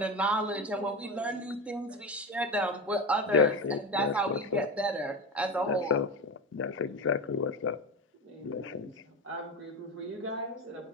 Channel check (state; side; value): normal; both; correlation 0.21